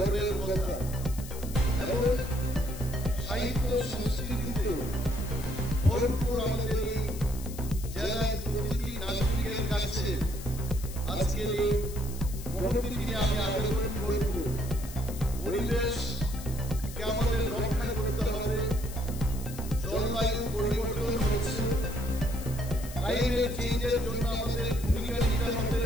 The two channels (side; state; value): left; noise; hiss, 14 dB below the sound